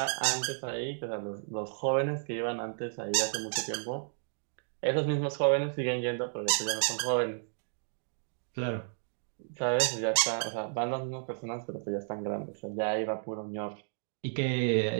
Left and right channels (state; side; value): silent; left; digital silence